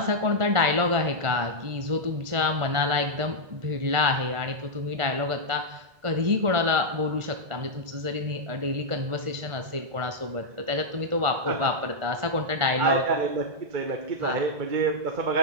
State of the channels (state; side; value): late; left; 1.5 ms